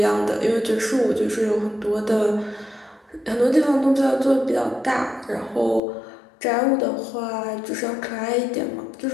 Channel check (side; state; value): right; drops out; at 5.8 s